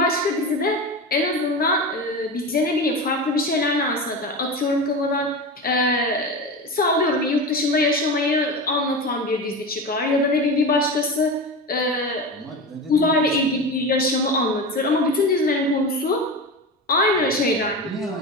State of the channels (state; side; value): normal; both; correlation 0.25